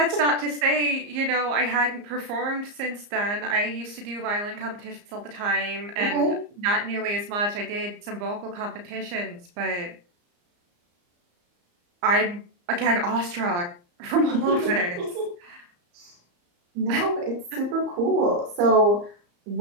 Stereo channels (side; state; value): left; late; 34 ms